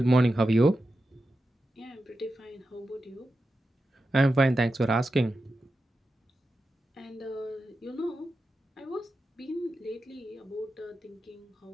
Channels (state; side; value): normal; both; correlation 0.90